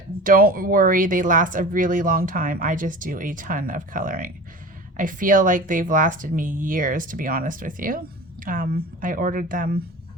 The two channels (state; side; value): normal; both; correlation 0.35